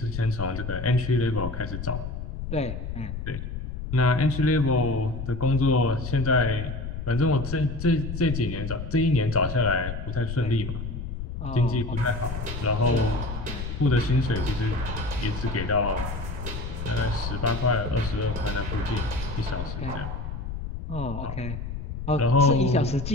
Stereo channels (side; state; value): left; noise; rumble, 6 dB below the sound